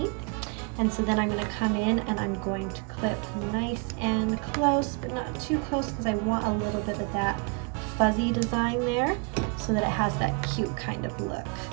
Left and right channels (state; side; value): quieter; left; 33.0 dB